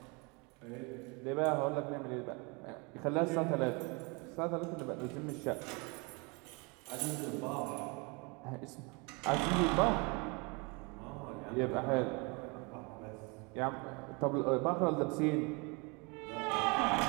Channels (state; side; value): quieter; left; 29.8 dB